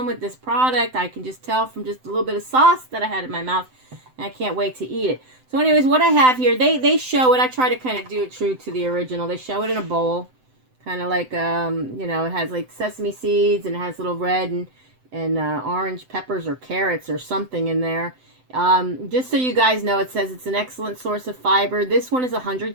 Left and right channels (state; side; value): late; left; 7.8 ms